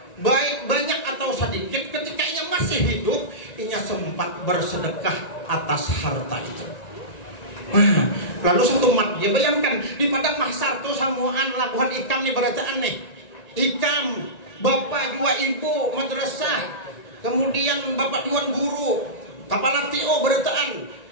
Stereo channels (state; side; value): late; right; 1.9 ms